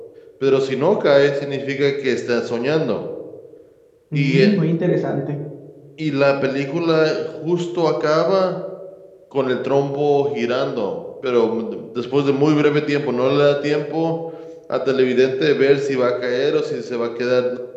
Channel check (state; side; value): identical; both; correlation 1.00